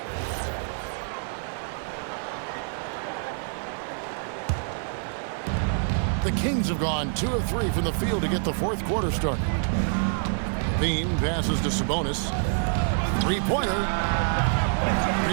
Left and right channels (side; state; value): left; silent; 58 dB below the other